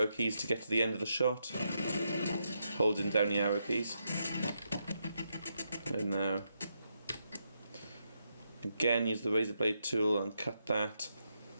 keys to get to the end of the shot. Holding down the arrow keys. And now, again, use the razor blade tool and cut that.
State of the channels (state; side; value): inverted; both; correlation -0.82